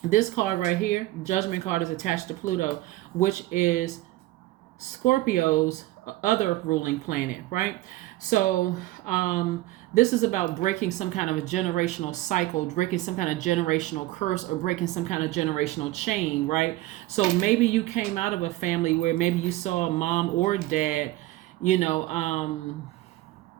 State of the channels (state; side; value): quieter; left; 17.1 dB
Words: right here, Judgment card, is attached to Pluto, which is Scorpio's other ruling planet, right? So this is about breaking some kind of a generational cycle, breaking some kind of generational curse, or breaking some kind of generational chain, right? So maybe you came out of a family where maybe you saw a mom or dad,